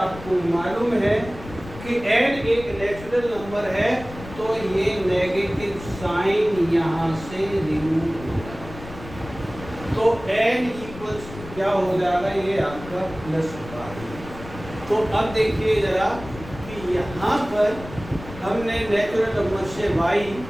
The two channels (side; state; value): left; noise; rumble, 14 dB below the sound